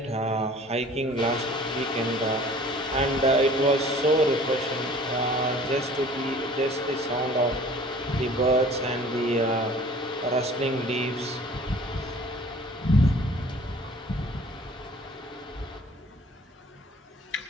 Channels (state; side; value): normal; both; correlation 0.49